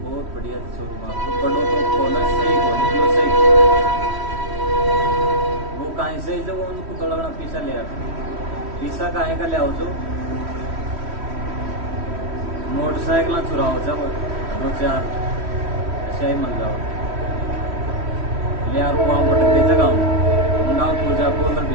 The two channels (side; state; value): left; late; 3.1 ms